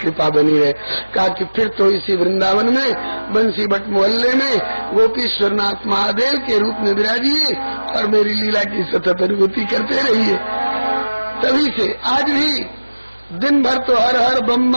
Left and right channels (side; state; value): both; inverted; correlation -1.00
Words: बनी रहे। कहा कि फिर तो इसी वृंदावन में बंसी भट्ट मोहल्ले में गोपीश्वरनाथ महादेव के रूप में विराजिए और मेरी लीला की सतत अनुभूति करते रहिए। तभी से आज भी दिन भर तो हर हर बम